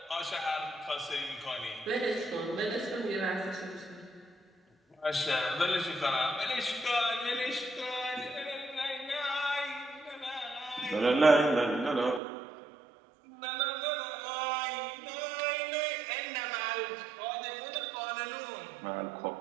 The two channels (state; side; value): drops out; left; at 12.2 s